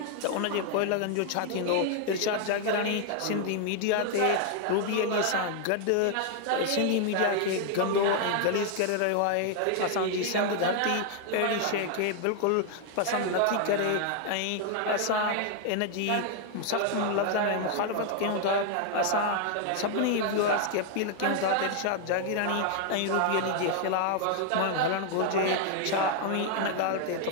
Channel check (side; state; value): both; different; correlation 0.00